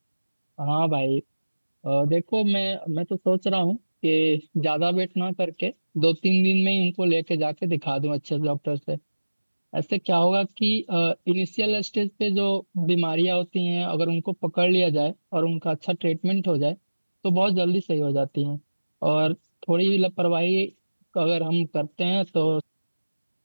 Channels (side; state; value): both; inverted; correlation -1.00